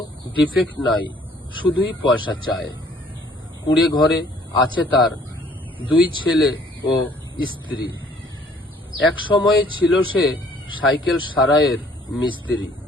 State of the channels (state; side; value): normal; both; correlation 0.59